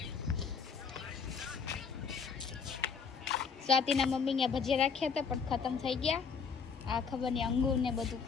સ્વાતિના મમ્મી ને ભજીયા રાખ્યા હતા પણ ખતમ થઈ ગયા. આ ખબર નહીં અંગૂર ને બધું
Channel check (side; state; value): right; quieter; 5.9 dB